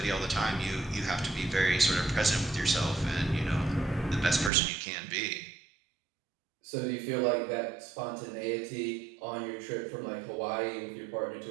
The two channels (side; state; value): left; drops out; at 4.5 s